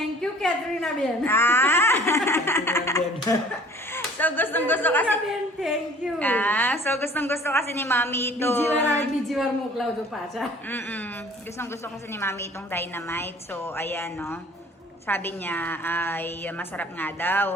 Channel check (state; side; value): normal; both; correlation 0.50